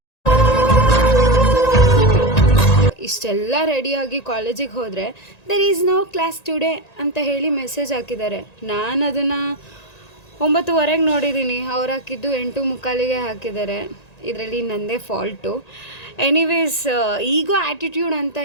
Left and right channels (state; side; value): late; right; 1.9 ms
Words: ಇಷ್ಟೆಲ್ಲ ರೆಡಿಯಾಗಿ ಕಾಲೇಜಿಗೆ ಹೋದರೆ there is no class today ಅಂತ ಹೇಳಿ ಮೆಸೇಜ್ ಹಾಕಿದ್ದಾರೆ. ನಾನು ಅದನ್ನು 9:15ಗೆ ನೋಡಿದ್ದೀನಿ, ಅವ್ರು ಹಾಕಿದ್ದು 8:45ಗೆ ಹಾಕಿದ್ದಾರೆ. ಇದರಲ್ಲಿ ನನ್ನದೇ ಫಾಲ್ಟು. ಎನಿವೇಸ್, ಈಗೋ ಆ್ಯಟಿಟ್ಯೂಡ್ ಅಂತ